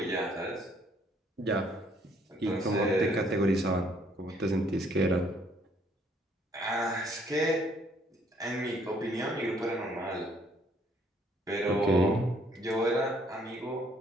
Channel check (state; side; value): normal; both; correlation 0.65